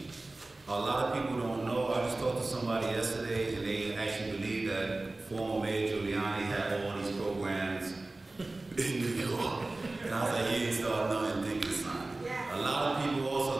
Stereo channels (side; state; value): left; quieter; 3.0 dB